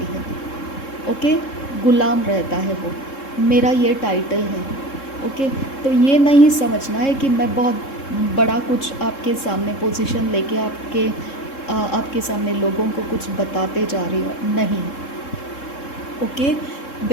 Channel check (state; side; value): late; right; 3.7 ms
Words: है। ओके, गुलाम रहता है वो, मेरा ये टाइटल है। ओके, तो ये नहीं समझना है कि मैं बहुत बड़ा कुछ आपके सामने पोजीशन लेके आपके सामने लोगों को कुछ बताते जा रही हूँ, नहीं। ओके,